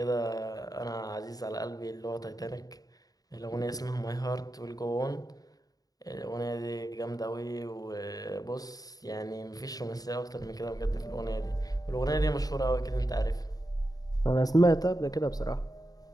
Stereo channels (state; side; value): late; right; 0.18 ms